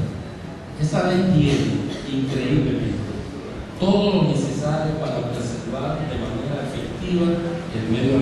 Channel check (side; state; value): both; identical; correlation 1.00